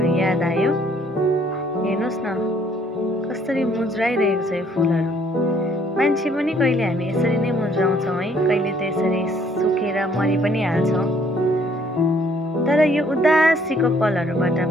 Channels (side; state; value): both; normal; correlation 0.63